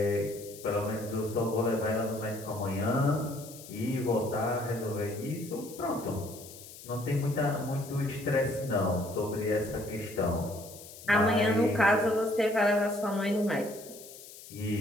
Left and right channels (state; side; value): noise; left; hiss, 16 dB below the sound